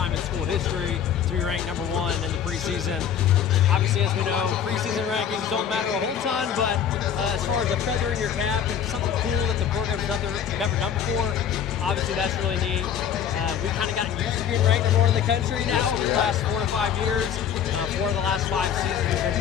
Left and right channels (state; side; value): quieter; right; 8.5 dB